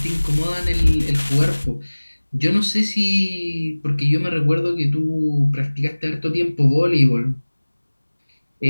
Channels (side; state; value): both; inverted; correlation -1.00